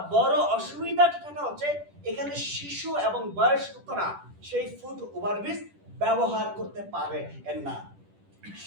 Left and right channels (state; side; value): late; left; 10 ms